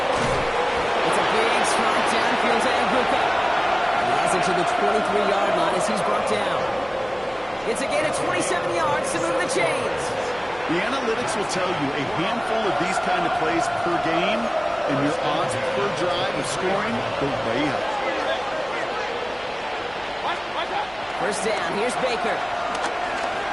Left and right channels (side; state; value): right; noise; hum, 25 dB below the sound